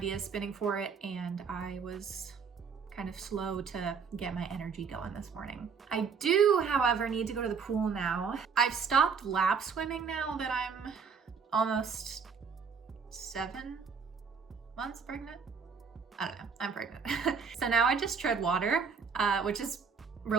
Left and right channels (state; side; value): quieter; left; 5.9 dB